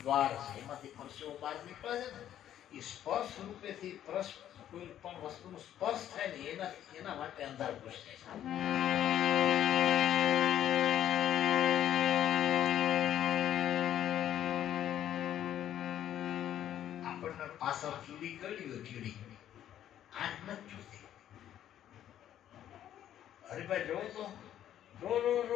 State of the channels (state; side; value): quieter; right; 11.1 dB